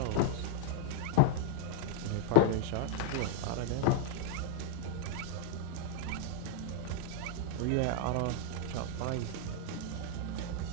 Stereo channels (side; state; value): both; different; correlation 0.00